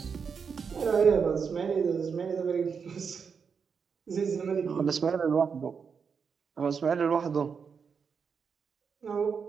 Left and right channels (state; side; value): quieter; left; 6.1 dB